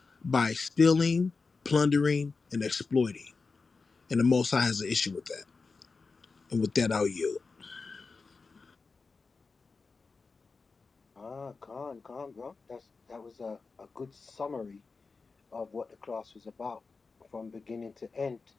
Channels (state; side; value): quieter; right; 4.3 dB